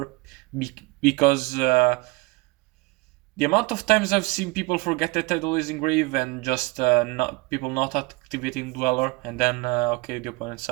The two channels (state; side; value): quieter; left; 25.0 dB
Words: because the amount of times I've seen people forget that Tidal is in grave and just people not activating Dweller, and then okay, the opponent